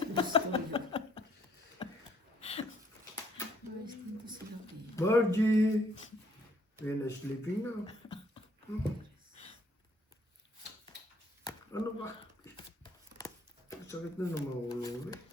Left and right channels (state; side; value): normal; both; correlation 0.65